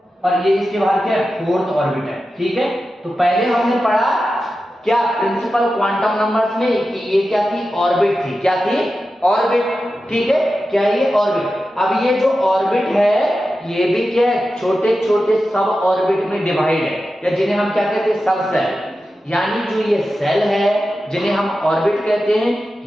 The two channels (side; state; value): both; normal; correlation 0.92